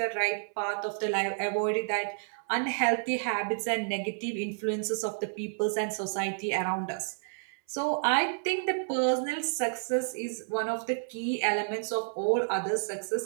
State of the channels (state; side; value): silent; left; 58 dB below the other